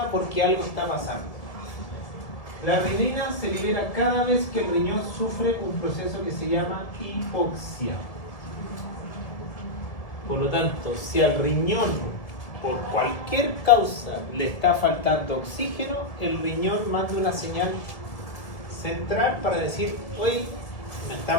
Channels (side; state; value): right; late; 1.7 ms